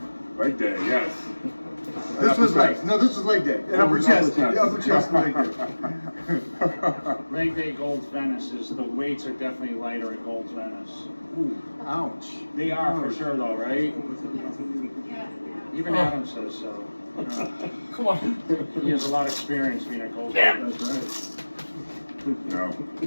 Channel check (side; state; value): both; inverted; correlation -1.00